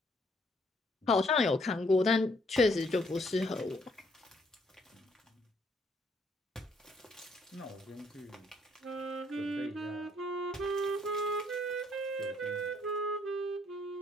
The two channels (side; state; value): both; normal; correlation 0.68